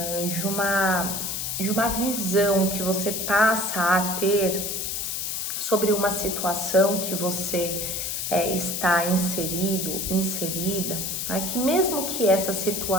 de uma visão que você passa a ter sobre uma situação que você está inserida, né? Que mesmo que essa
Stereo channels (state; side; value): noise; left; hiss, 2 dB below the sound